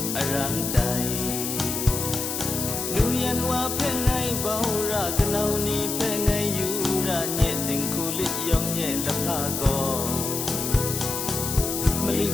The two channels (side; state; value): left; noise; hiss, 3 dB below the sound